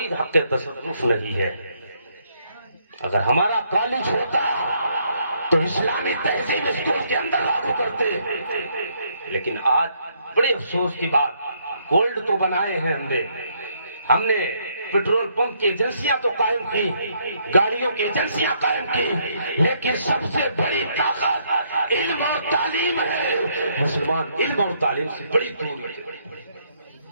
حق تصرف نہیں ہے۔ اگر ہمارا کالج ہوتا تو اسلامی تہذیب اسکول کے اندر لاگو کرتے، لیکن آج بڑے افسوس کی بات، گولڈ تو بنائے ہیں ہم نے پیٹرول پمپ کی ایجنسیاں تو قائم کی، گاڑیوں کی ایجنسیاں قائم کی، لیکن سب سے بڑی طاقت علم اور تعلیم ہے۔ مسلمان علم اور تعلیم سے بڑی دور ہے۔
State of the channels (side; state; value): both; inverted; correlation -0.71